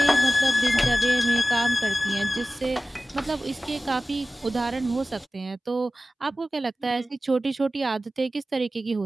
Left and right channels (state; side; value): normal; both; correlation 0.96